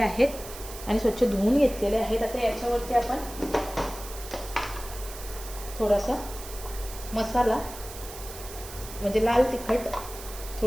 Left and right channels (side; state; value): right; noise; hiss, 13 dB below the sound